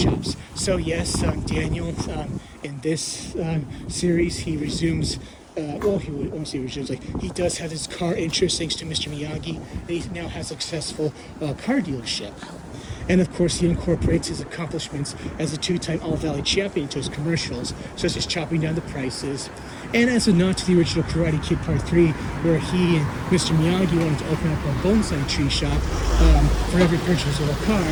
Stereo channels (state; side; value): identical; both; correlation 1.00